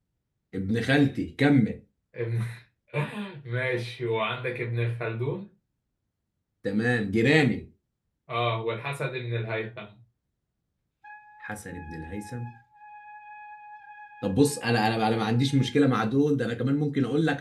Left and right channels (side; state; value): both; identical; correlation 1.00